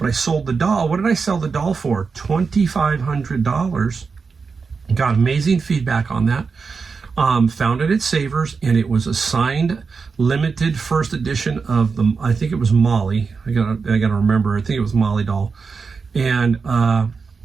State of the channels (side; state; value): left; quieter; 5.0 dB